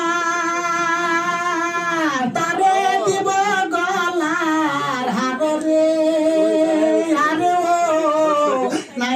তারে দিব গলার হার রে আরে ও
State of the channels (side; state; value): both; identical; correlation 1.00